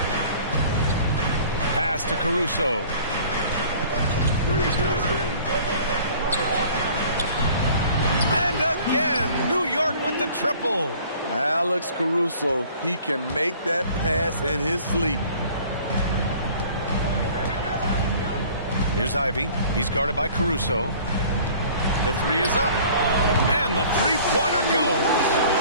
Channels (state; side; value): inverted; both; correlation -0.50